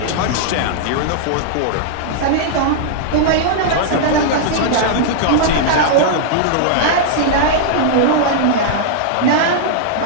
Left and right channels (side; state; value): both; different; correlation -0.01